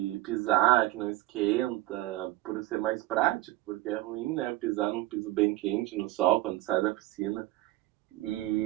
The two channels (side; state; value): left; quieter; 17.3 dB